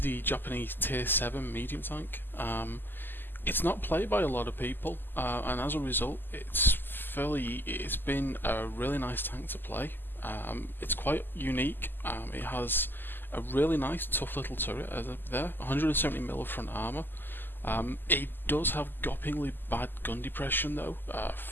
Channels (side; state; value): right; late; 0.093 ms